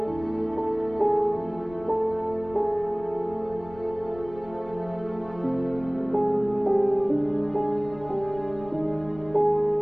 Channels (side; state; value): left; noise; rumble, 19 dB below the sound